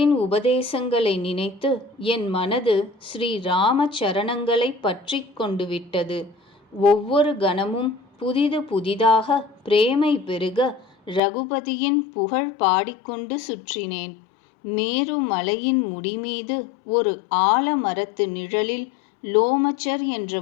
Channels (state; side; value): drops out; right; at 11.2 s